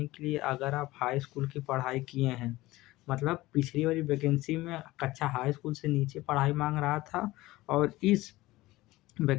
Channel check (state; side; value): quieter; right; 18.5 dB